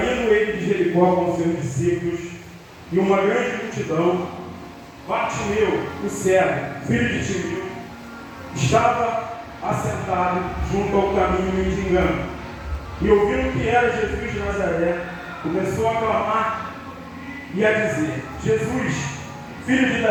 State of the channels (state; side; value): identical; both; correlation 1.00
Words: ele de Jericó com seus discípulos e uma grande multidão, Bartimeu, o cego, filho de Timeu, estava assentado junto ao caminho mendigando, e ouvindo que era Jesus de Nazaré, começou a clamar e a dizer: Jesus, filho de